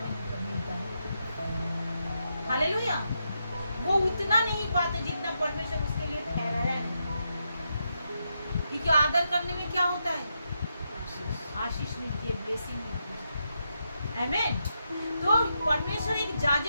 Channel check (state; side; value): inverted; both; correlation -0.83